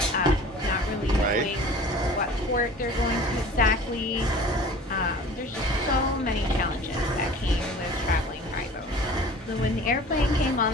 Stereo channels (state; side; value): normal; both; correlation 0.43